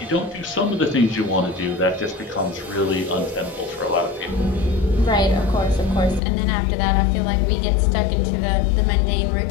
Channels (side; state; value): right; drops out; at 6.2 s